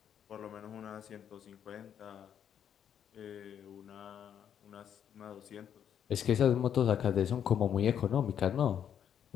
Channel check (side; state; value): right; quieter; 8.9 dB